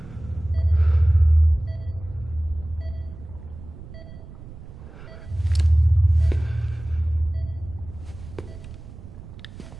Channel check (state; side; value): noise; right; rumble, 15 dB below the sound